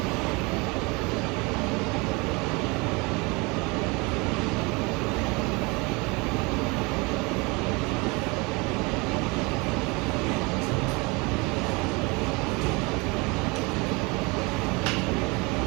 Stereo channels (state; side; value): quieter; left; 26.9 dB